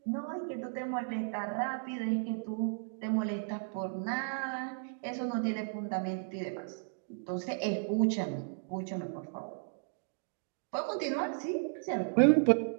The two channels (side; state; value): left; silent; digital silence